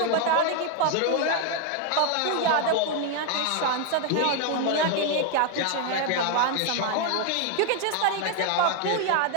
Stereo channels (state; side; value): different; both; correlation 0.01